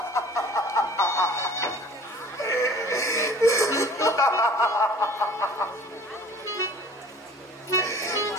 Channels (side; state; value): both; normal; correlation 0.48